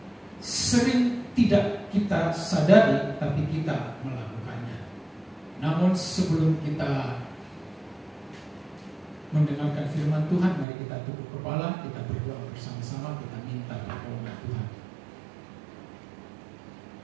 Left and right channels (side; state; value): left; drops out; at 10.7 s